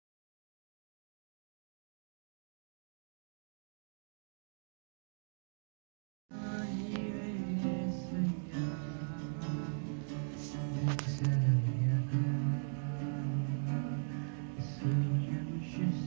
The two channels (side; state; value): left; silent; digital silence